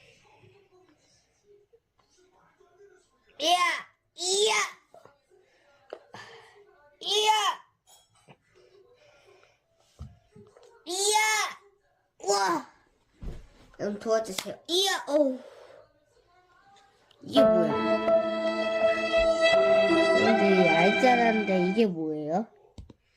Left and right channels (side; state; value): both; identical; correlation 1.00